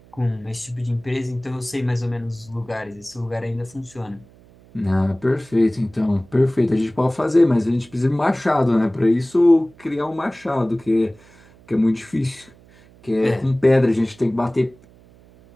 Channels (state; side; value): noise; right; hum, 26 dB below the sound